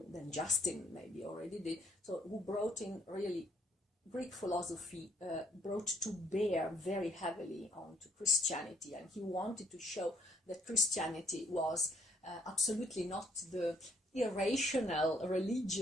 then Justin maybe already did. So who brought in really Greek philosophy, brought to bear very heavily onto Christianity, and he wanted to show that Christianity was absolutely not the irrational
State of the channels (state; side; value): normal; both; correlation 0.67